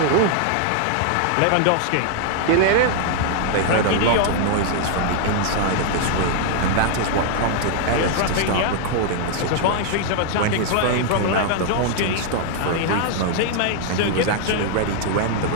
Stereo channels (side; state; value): both; different; correlation 0.00